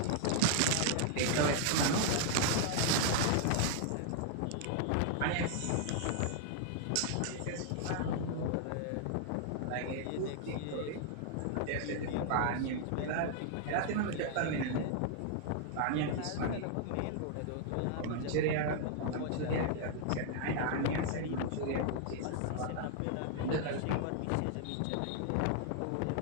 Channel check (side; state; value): both; different; correlation 0.00